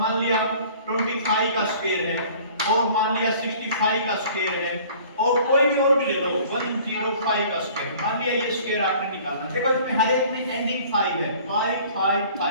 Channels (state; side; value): inverted; both; correlation -0.50